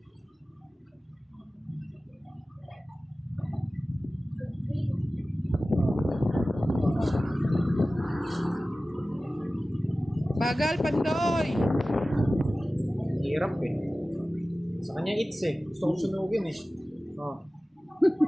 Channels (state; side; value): normal; both; correlation 0.96